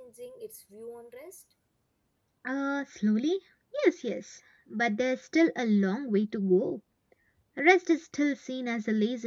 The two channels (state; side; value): identical; both; correlation 1.00